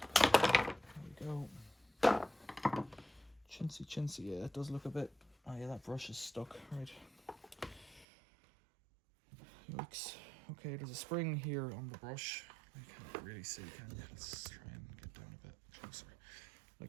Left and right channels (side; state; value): left; drops out; at 8.1 s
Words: Go. Chintzy, yeah, it does look a bit. Oh yeah, that brush is stuck, right. Yikes. Okay, there's a spring here on the brush. You can't really see, can you? Let's try and get down a bit closer.